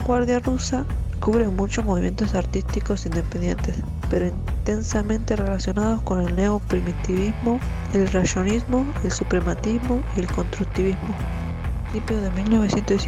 rusa cubre muchos movimientos artísticos independientes, pero intensamente relacionados con el neoprimitivismo, el rayonismo, el suprematismo y el constructivismo. A principios de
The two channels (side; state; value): both; identical; correlation 1.00